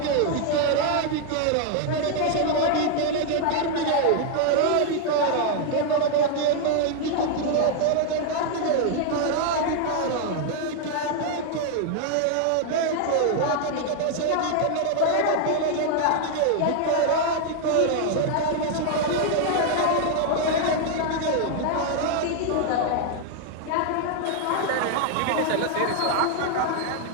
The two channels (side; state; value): both; different; correlation 0.00